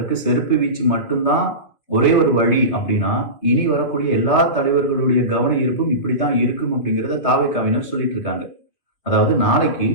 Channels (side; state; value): right; late; 3.0 ms